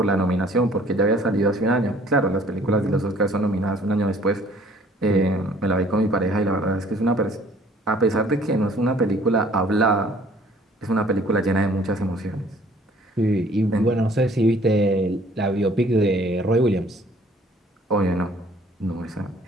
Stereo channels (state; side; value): normal; both; correlation 0.56